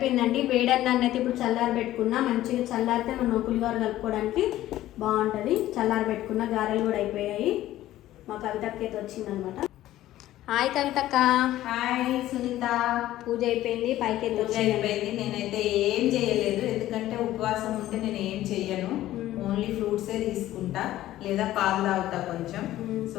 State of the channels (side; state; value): right; quieter; 14.4 dB